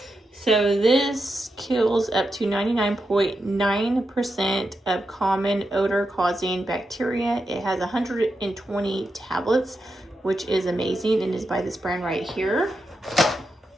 So this kills up to 99.9% of common odor causing bacteria. It has 120 tablets, which is amazing, and is by this brand right here.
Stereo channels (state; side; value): normal; both; correlation 0.87